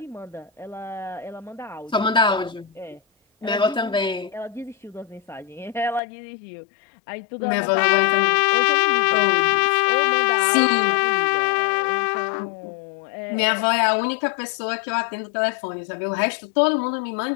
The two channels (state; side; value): drops out; right; at 6.0 s